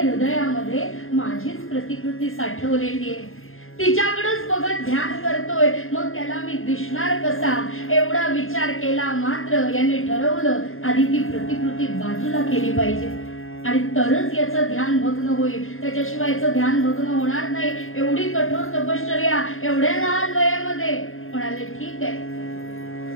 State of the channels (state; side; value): late; right; 0.60 ms